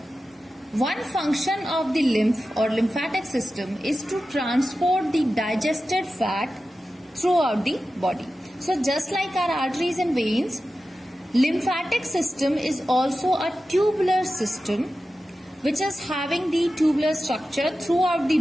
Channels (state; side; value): normal; both; correlation 0.93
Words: one function of the lymph or lymphatic system is to transport the digested fat throughout the body. So just like our arteries and veins, lymphatic system is also a tubular system which is having the tubular structure throughout the